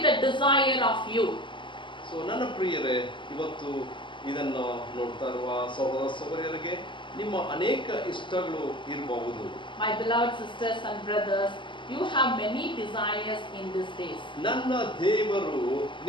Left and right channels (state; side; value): late; right; 0.24 ms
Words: the desire of you. So ನನ್ನ ಪ್ರಿಯರೇ, ಇವತ್ತು ಇದನ್ನು ನೋಡ್ತಾ ಇರುವ ಸಹೋದರ ಸಹೋದರಿಯರಿಗೆ ನಿಮ್ಮ ಅನೇಕ ಇಷ್ಟಗಳು ಇರಬಹುದು. My beloved sisters and brothers, you have many desires in these days. ನನ್ನ ದೇವರು